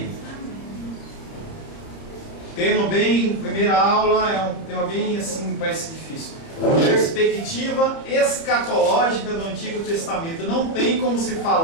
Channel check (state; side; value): late; right; 30 ms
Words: Primeira aula é um tema bem assim, parece difícil. Perspectiva escatológica do Antigo Testamento. Não tem como se